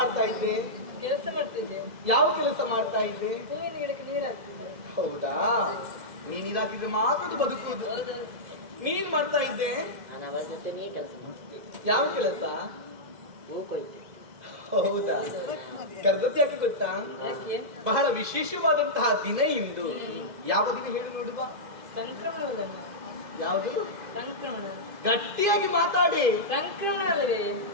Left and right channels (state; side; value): late; left; 2.0 ms